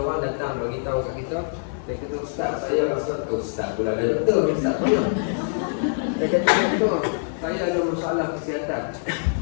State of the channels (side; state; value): right; silent; digital silence